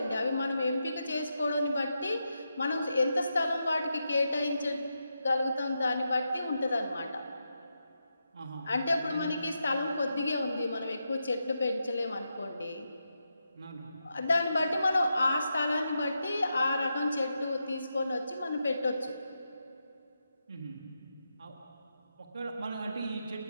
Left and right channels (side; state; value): both; inverted; correlation -0.86